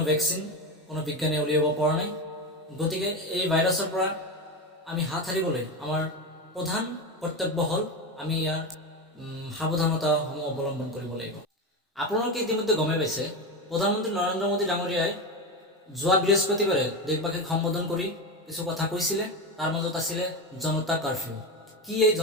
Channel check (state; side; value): normal; both; correlation 0.18